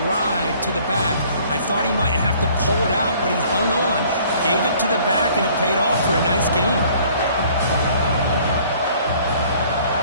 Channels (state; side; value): inverted; both; correlation -0.56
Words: ride to the back. I thought he might have to pull it out, but he hung on. Gave it to the back, and it paid off for a nice gain.